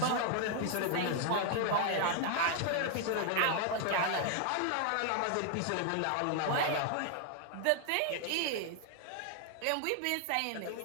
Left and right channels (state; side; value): different; both; correlation 0.00